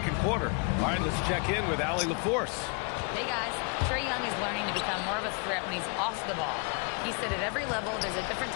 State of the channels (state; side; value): quieter; right; 35.5 dB